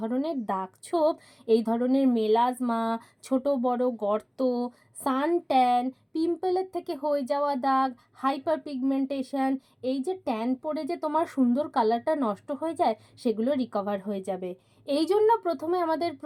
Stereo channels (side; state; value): both; identical; correlation 1.00